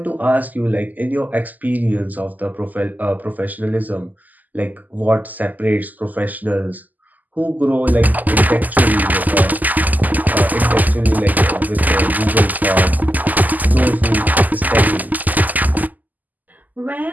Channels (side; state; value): left; late; 0.082 ms